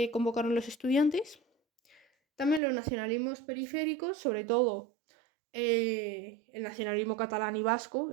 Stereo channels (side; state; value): left; drops out; at 2.6 s